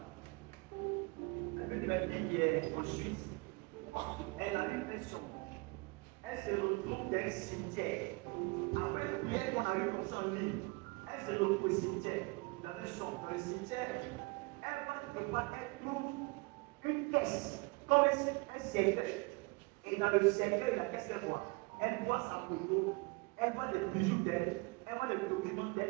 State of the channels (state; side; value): quieter; left; 28.0 dB